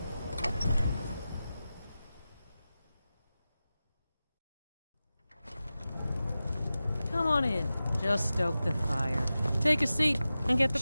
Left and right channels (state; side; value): inverted; both; correlation -0.94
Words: Come on in. Just stoke the fire. Take a seat and get the